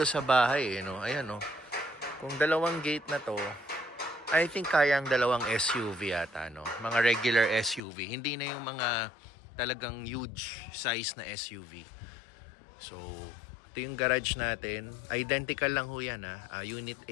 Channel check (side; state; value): right; drops out; at 7.8 s